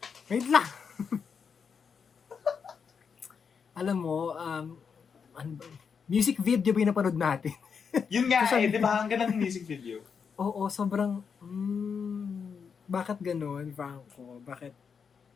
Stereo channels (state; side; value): quieter; right; 6.3 dB